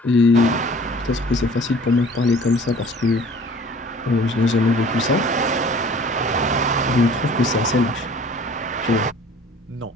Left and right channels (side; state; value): both; normal; correlation 0.49